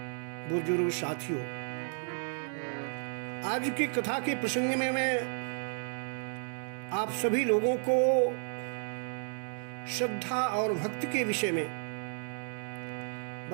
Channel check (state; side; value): silent; left; 56 dB below the other